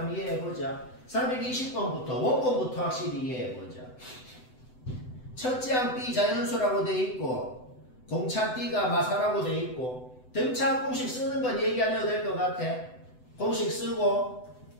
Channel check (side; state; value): right; late; 7.9 ms